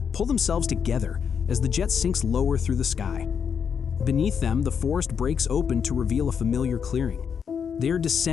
themselves together as the jet sinks lower through the sky. Beneath them, the forest breaks open to reveal a familiar clearing. They are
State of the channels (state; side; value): quieter; right; 7.0 dB